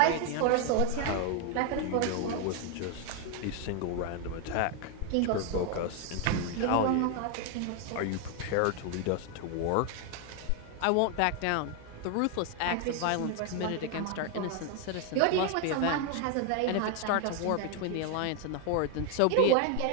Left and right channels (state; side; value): different; both; correlation 0.01